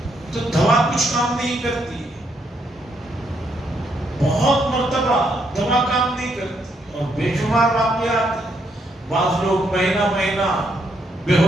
تو دوا کچھ کام نہیں کرتی ہے۔ بہت مرتبہ دوا کام نہیں کرتی اور بے شمار واقعات ہیں۔ بعض لوگ مہینہ بے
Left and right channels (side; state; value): both; normal; correlation 0.75